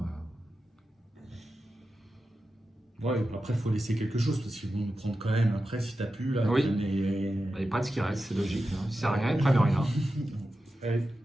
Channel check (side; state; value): both; normal; correlation 0.92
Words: Ouais, après, il faut laisser quelque chose parce qu'ils vont nous prendre quand même. Après, si t'as pu, là. Oui. les- Il n'y a pas de ce qui reste, c'est logique. Hein. Si ça sert à rien, ils prennent rien. Ouais.